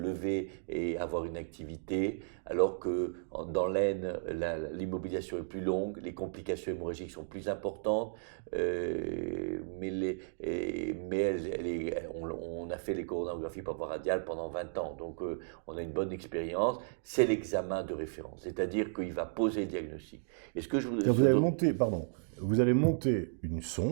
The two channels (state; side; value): silent; left; digital silence